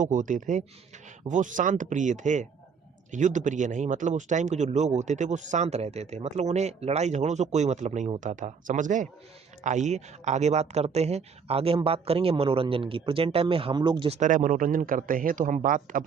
होते थे वो शांत प्रिय थे, युद्ध प्रिय नहीं। मतलब उस टाइम के जो लोग होते थे वो शांत रहते थे, मतलब उन्हें लड़ाई झगड़ों से कोई मतलब नहीं होता था, समझ गए। आइए आगे बात करते हैं। आगे हम बात करेंगे मनोरंजन की। प्रेजेंट टाइम में हम लोग जिस तरह मनोरंजन करते हैं, तो हम बात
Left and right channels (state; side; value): quieter; left; 6.0 dB